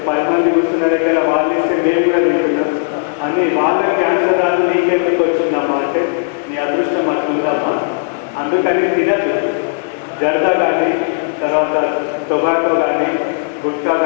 10 మంది కూర్చున్న దగ్గర వాళ్ళు ఇస్తే మేము కూడా తింటున్నాం అని వాళ్ళ క్యాన్సర్ రాదు నీకెందుకు వచ్చిందమ్మా అంటే నీ అదృష్టం అట్లుందమ్మా, అందుకని తినద్దు. జర్దా కానీ తర్వాత టొబాకో కానీ గుట్కా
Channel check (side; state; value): right; silent; digital silence